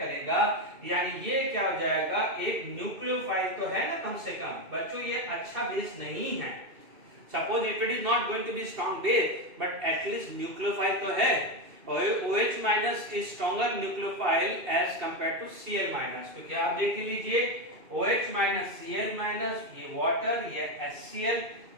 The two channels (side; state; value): left; late; 2.7 ms